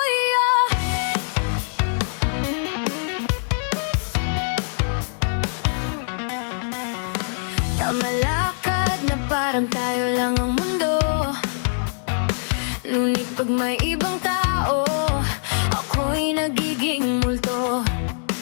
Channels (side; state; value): right; silent; digital silence